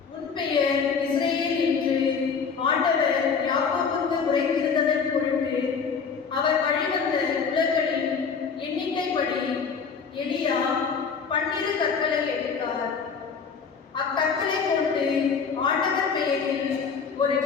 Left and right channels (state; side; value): quieter; right; 5.8 dB